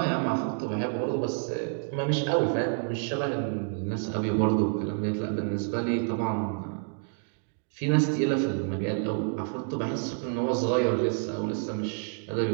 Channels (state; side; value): silent; left; 56 dB below the other